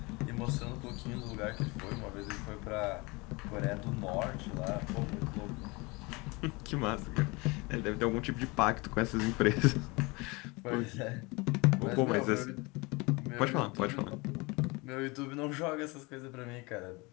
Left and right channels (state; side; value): quieter; right; 25.9 dB